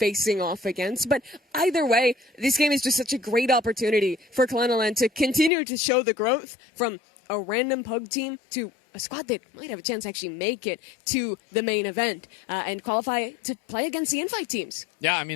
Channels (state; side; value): drops out; right; at 5.5 s